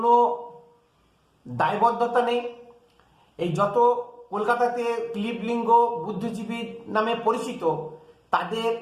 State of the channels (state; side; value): identical; both; correlation 1.00